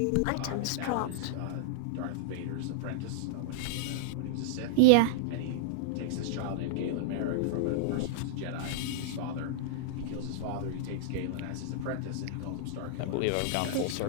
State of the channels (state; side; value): different; both; correlation -0.02